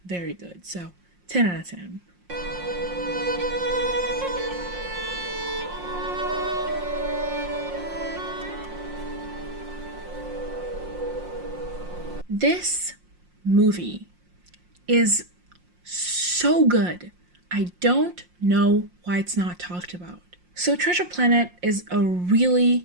very good, so 10 out of 10. This movie is so good. I don't know why it's not talked about. So Treasure Planet is a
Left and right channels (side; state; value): left; late; 5.6 ms